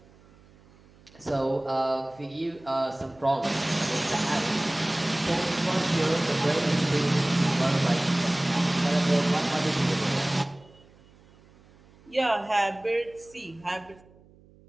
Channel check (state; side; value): noise; right; hum, 27 dB below the sound